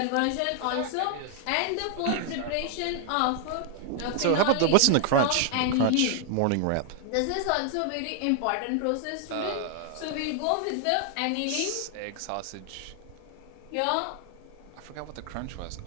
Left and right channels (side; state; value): both; different; correlation 0.00